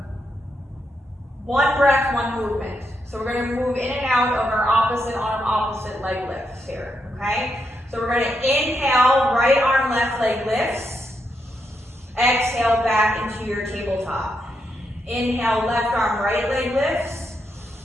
one breath, one movement. So we're gonna move in and out of our opposite arm, opposite leg lifts here, okay? So we're gonna inhale, right arm, left leg lifts. Exhale back into your tabletop. Inhale, left arm, right leg lifts.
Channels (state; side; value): normal; both; correlation 0.81